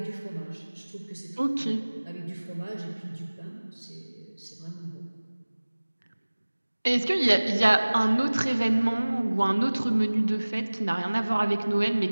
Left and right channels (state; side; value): inverted; both; correlation -1.00